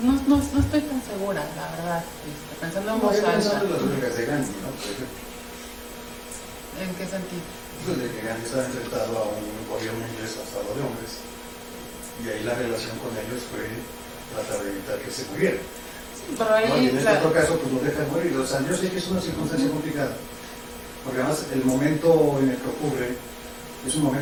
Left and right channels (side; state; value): both; identical; correlation 1.00